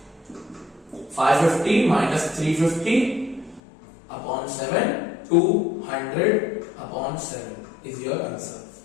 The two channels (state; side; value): drops out; right; at 3.6 s